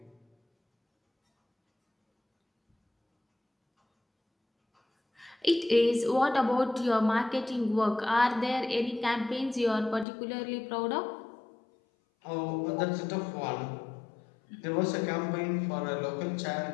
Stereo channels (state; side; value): drops out; right; at 10.1 s